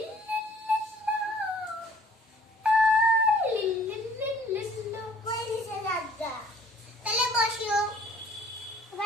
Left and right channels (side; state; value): both; normal; correlation 0.55